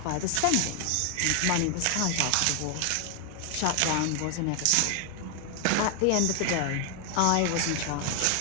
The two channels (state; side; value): different; both; correlation 0.00